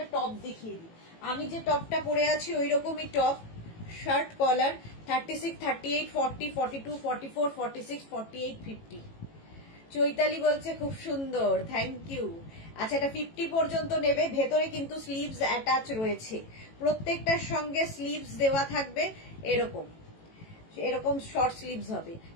টপ দেখিয়ে দিই। আমি যে টপটা পরে আছি ওই রকমই টপ, শার্ট কলার, 36, 38, 40, 42, 44, 46, 48, 50। চৈতালি বলছে খুব সুন্দর, থ্যাংক ইউ। আচ্ছা, এটা 50 পর্যন্ত নেবে। ভেতরে কিন্তু স্লিভস অ্যাটাচ রয়েছে, প্রত্যেকটার সঙ্গে স্লিভস দেওয়া থাকবে। এরকম শর্ট স্লিভস হবে,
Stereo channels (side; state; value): right; late; 18 ms